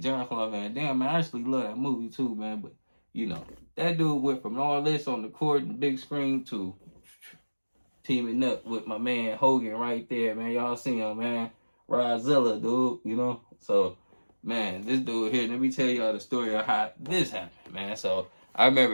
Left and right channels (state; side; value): inverted; both; correlation -1.00